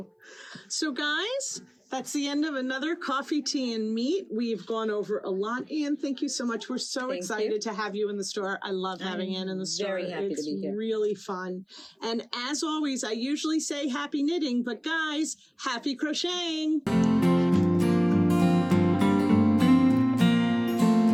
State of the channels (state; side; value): identical; both; correlation 1.00